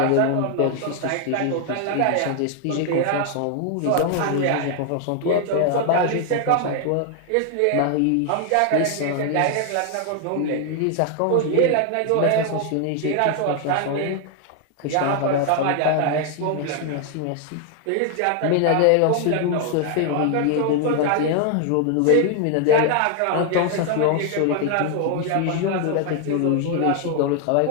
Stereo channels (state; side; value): different; both; correlation 0.00